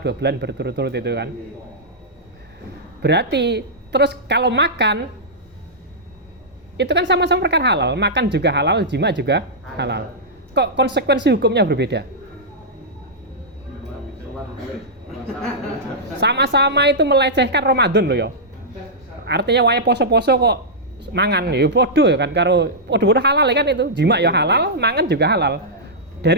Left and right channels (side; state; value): both; normal; correlation -0.11